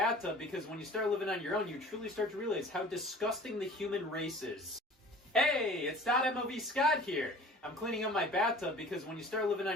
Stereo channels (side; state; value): both; normal; correlation 0.45